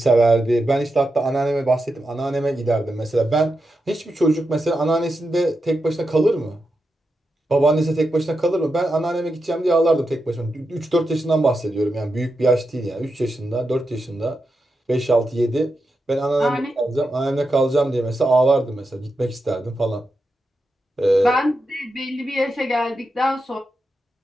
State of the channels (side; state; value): both; normal; correlation 0.88